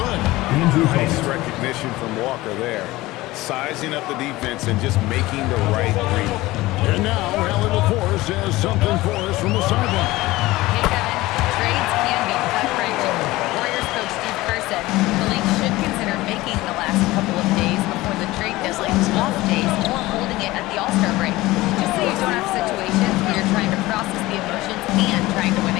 Nice recognition from Walker there. Sizing up the defense and just making the right read. And now, Allie LaForce has something for us from the sideline. Hey, Kevin. Trades can be gut-wrenching. Warriors coach Steve Kerr said the league should consider making the last couple of days before the trade deadline off days or holding it at the All-Star break. Just so you don't have situations where you're trying to process the emotions and trying to win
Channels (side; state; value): right; quieter; 18.8 dB